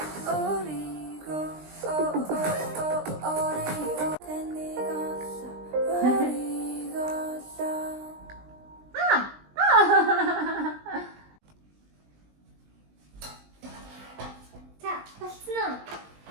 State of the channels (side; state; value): left; late; 20 ms